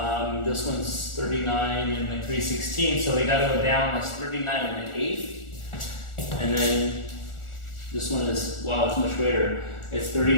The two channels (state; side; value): late; right; 1.4 ms